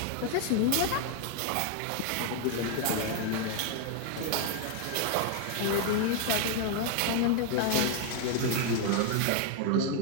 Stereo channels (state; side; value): different; both; correlation 0.00